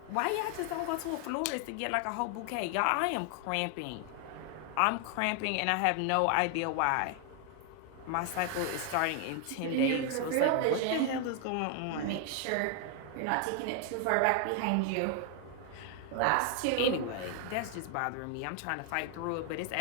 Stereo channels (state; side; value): different; both; correlation 0.00